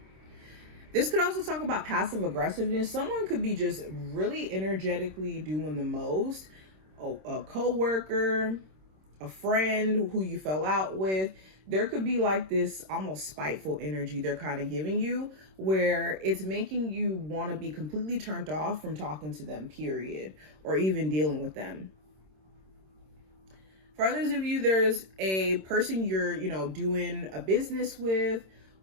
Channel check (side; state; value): left; late; 26 ms